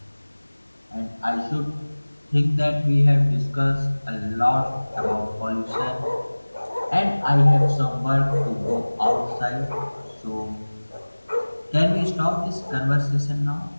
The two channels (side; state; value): both; inverted; correlation -1.00